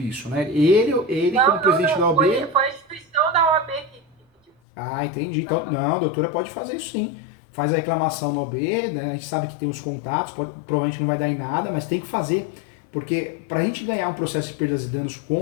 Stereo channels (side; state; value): right; drops out; at 4.5 s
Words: né? Ele como presidente da OAB... Foi a instituição da OAB que pediu. Ah, entendi. Então, não, a doutora pode fazer isso sim. Faz a reclamação na OAB, né? A gente sabe que tem os contatos, provavelmente não vai dar em nada, mas tem que fazer. Porque para a gente ganhar um processo de perdas e danos